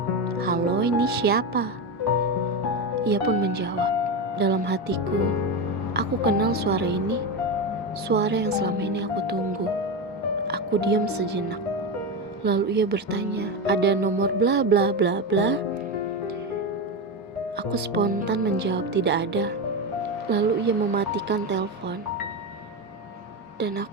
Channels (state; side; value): normal; both; correlation 0.16